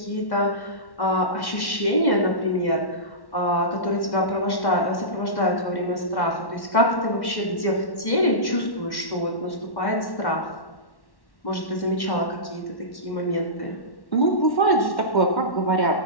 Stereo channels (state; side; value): late; right; 1.1 ms